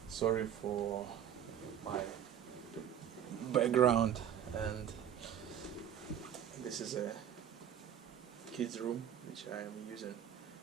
Sorry for my background, and this is a kids room which I am using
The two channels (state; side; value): quieter; left; 9.5 dB